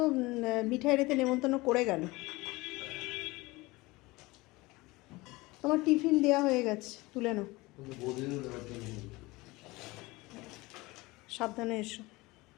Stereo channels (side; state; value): right; quieter; 21.9 dB